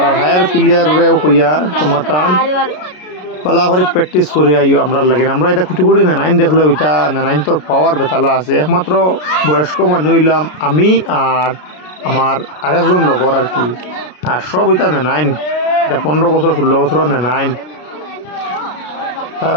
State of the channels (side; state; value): right; late; 33 ms